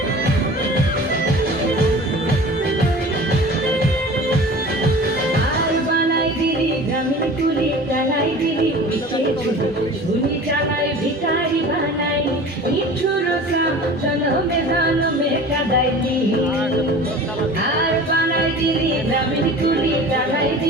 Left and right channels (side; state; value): both; normal; correlation 0.40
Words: আর বানাই দিলি গ্রামীণ কুলি টানাই দিলি পিছে ঝুলি চালাই ভিখারি বানাই নিঠুর সাম জনমে কাদাই দিলি আর বানাই দিলি গ্রামীণ কুলি টানাই